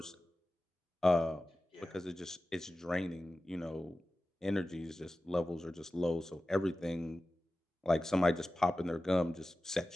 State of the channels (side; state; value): both; normal; correlation 0.95